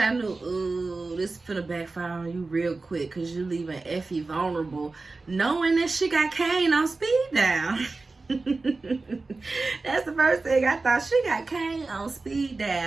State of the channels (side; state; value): left; quieter; 3.6 dB